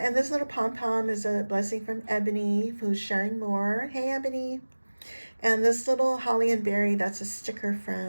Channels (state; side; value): inverted; both; correlation -1.00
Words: this little pom-pom is a blessing from Eboney, who's sharing more. Hey Eboney. And this little holly and berry, that's a sticker